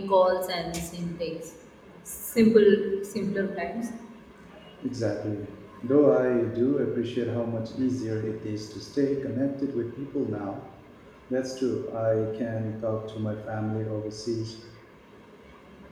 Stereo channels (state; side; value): identical; both; correlation 1.00